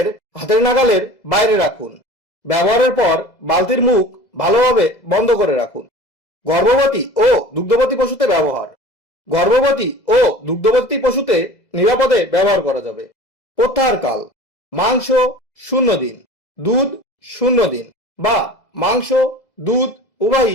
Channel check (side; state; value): right; late; 2.0 ms